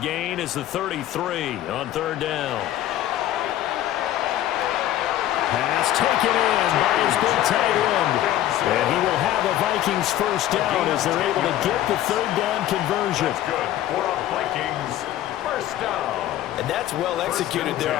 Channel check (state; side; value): quieter; right; 13.2 dB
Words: is the 33 on 3rd down. Pass taken in by his big tight end. And he will have a Vikings 1st down as they're able to get the 3rd down conversion. That's good for a Vikings 1st down. And that's well executed there